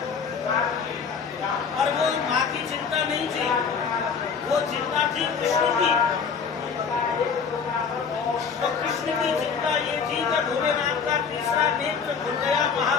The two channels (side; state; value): right; quieter; 6.0 dB